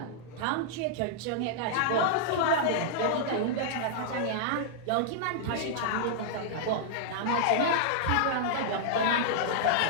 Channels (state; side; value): different; both; correlation -0.02